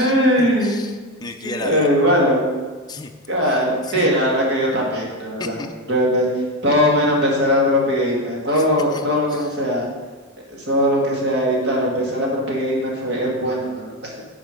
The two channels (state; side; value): normal; both; correlation 0.11